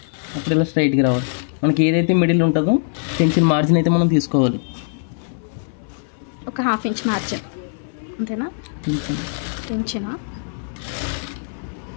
అప్పుడు ఇలా స్ట్రైట్గా రావాలి. మనకి ఏదైతే మిడిల్ ఉంటుందో టెన్షన్ మార్జిన్ అయితే మనం తీసుకోవాలి. ఒక 1/2 ఇంచ్ మార్జిన్ అంతేనా? టెన్షనా?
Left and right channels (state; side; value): silent; right; 65 dB below the other